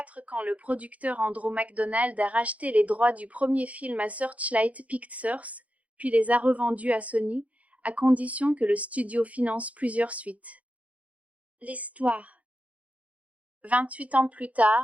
quand le producteur Andrew McDonald a racheté les droits du premier film à Searchlight Pictures, puis les a revendus à Sony, à condition que le studio finance plusieurs suites. L'histoire. 28 ans plus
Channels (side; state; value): left; late; 0.068 ms